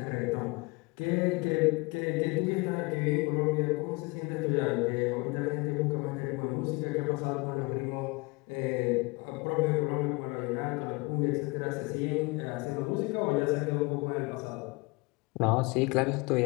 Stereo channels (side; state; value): right; quieter; 26.9 dB